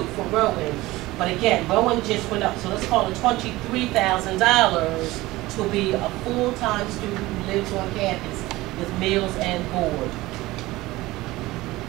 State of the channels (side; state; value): left; quieter; 18.9 dB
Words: for Rowan. But again, Rowan just went up, so let's call it $23,000 to be a full-time student who lives on campus with meals and board.